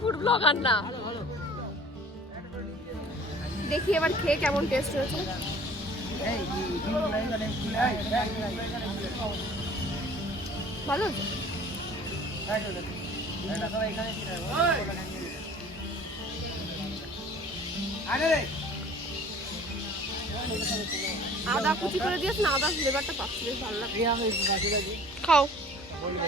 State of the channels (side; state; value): both; normal; correlation 0.49